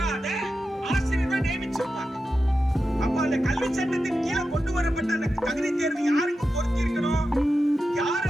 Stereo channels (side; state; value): both; normal; correlation 0.91